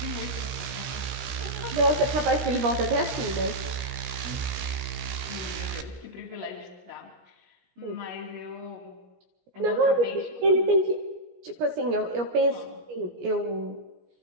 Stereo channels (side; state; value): left; late; 17 ms